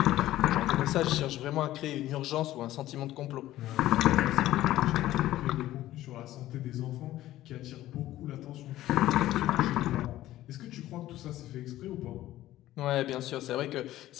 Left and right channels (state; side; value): quieter; right; 14.7 dB